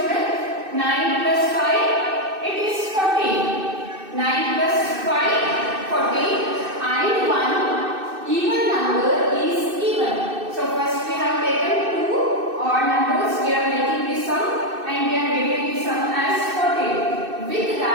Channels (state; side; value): late; left; 2.6 ms